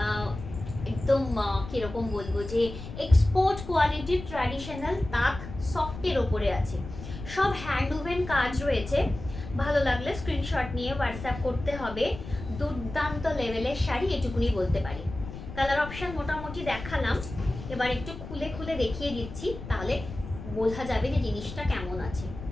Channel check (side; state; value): left; noise; rumble, 11 dB below the sound